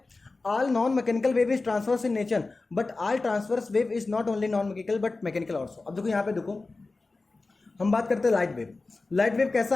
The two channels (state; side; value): quieter; right; 3.5 dB